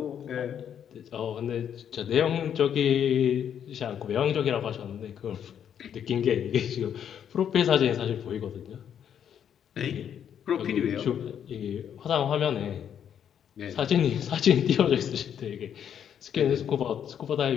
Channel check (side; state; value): right; quieter; 8.9 dB